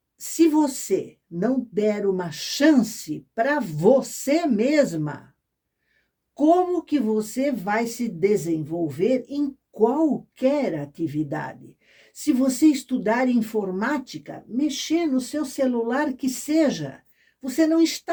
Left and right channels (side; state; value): both; identical; correlation 1.00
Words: se você não der uma chance para você mesma, como que você vai se desenvolver em qualquer atividade? Se você estudar informática, mexer no seu celular que seja, você não